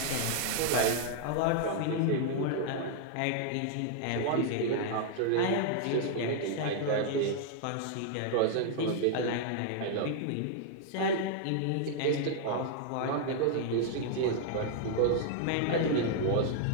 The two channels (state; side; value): different; both; correlation -0.01